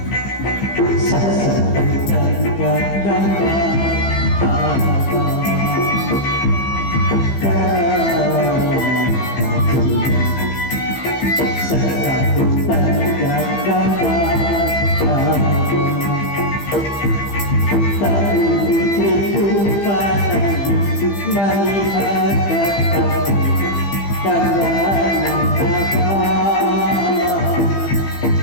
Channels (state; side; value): late; right; 15 ms